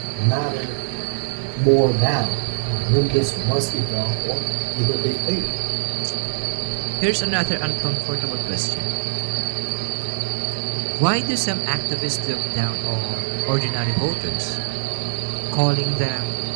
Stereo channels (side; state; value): left; silent; digital silence